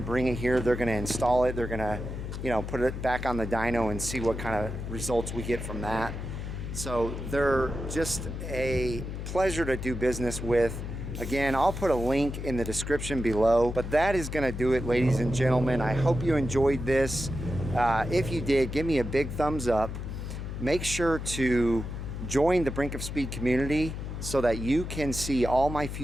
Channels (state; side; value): noise; left; hum, 6 dB below the sound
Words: to bring it here. They're going to install it. They're going to, you know, put it back on the dyno and see what kind of results we get from that. So they're just a pleasure to do business with. Again, I'll put a link in the description below, but that is going to do it, ladies and gentlemen. I hope you enjoyed this. If you did, give me a big thumbs up. Make sure to join the Brink of Speed community so that you can see all my